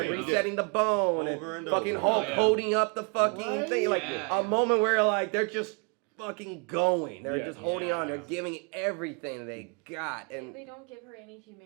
resetting the bone and fucking Hulk holding up the fucking thing. Like a moment where like they're just fucking going. They're just holding on. They're giving everything they got, and they don't give her any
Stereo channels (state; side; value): quieter; left; 33.9 dB